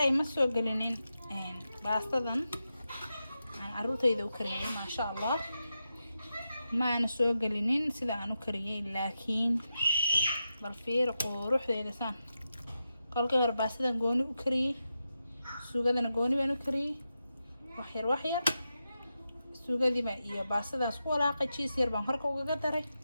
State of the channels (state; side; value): inverted; both; correlation -0.89